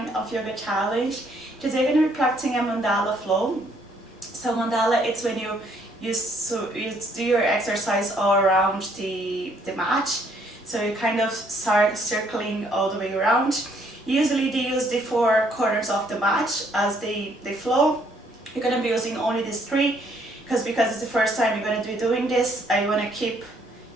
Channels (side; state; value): both; normal; correlation 0.67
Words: of yoga challenge. Today we're going to be practicing a mandala flow. So mandala, it's when you do your exercise all around the mat. So you kind of start circling all the way around. Usually they use the 4 corners of the mat as they flow. You're going to be using only these 3 because it's the first time you're going to be doing this. I want to keep